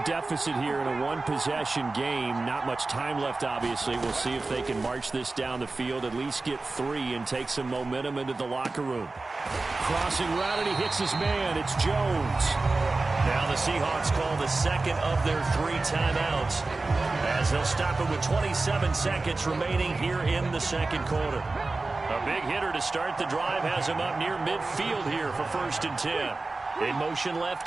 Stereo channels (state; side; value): quieter; left; 3.4 dB